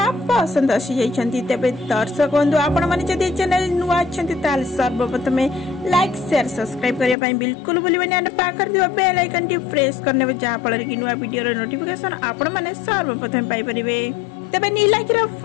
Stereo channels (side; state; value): right; drops out; at 7.2 s